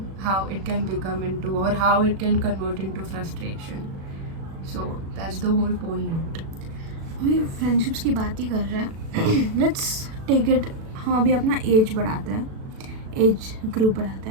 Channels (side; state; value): left; late; 37 ms